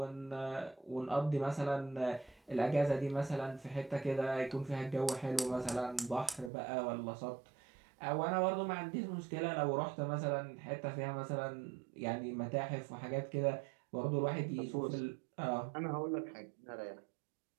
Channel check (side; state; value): left; drops out; at 6.5 s